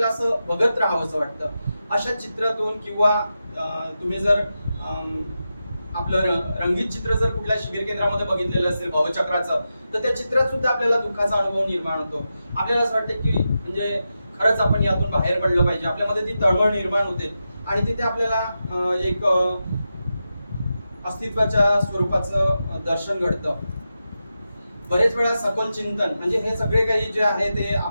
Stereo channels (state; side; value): inverted; both; correlation -0.90